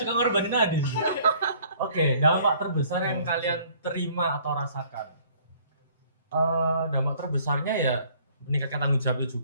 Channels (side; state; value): both; inverted; correlation -0.57